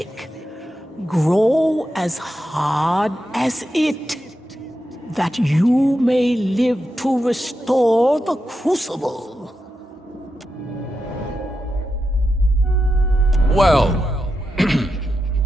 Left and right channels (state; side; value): normal; both; correlation 0.87